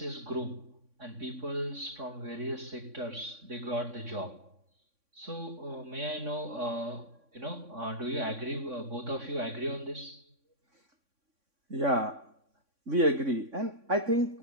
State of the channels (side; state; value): left; late; 3.6 ms